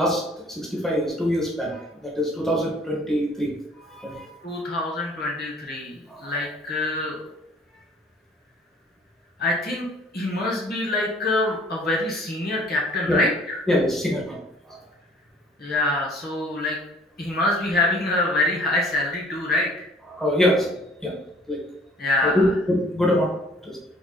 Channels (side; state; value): both; normal; correlation 0.54